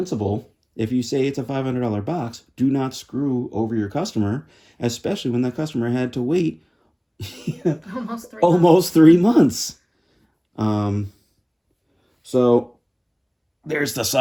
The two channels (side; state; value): both; identical; correlation 1.00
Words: if you say it's a $500 box, do not screw over your customer, especially when that customer had to wait almost 3 months. So there's the